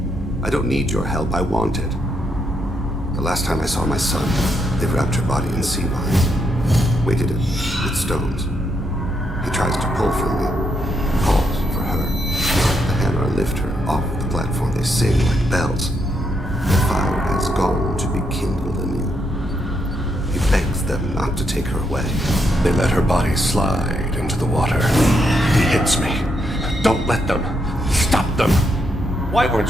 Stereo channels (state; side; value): normal; both; correlation 0.78